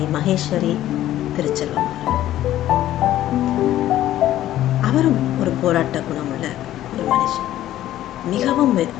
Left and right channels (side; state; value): right; quieter; 13.3 dB